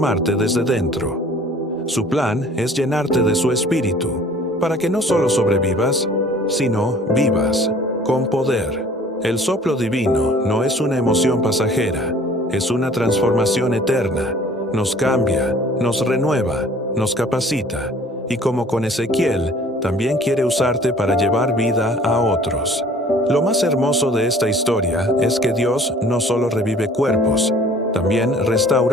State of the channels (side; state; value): both; normal; correlation 0.51